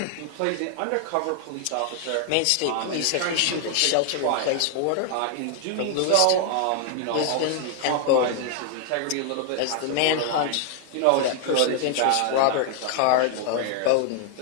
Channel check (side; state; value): both; different; correlation 0.00